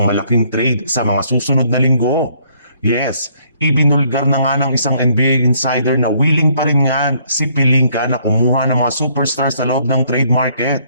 malaking trade sa mga susunod na linggo. Yes, ibinulgar na nga ng isang NBA insider na willing pa rin nga si Pelinka na kumuha ng mga superstars sa loob ng trade market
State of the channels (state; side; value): inverted; both; correlation -0.66